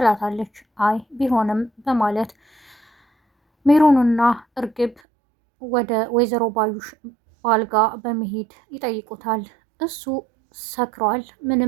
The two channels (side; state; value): left; drops out; at 5.0 s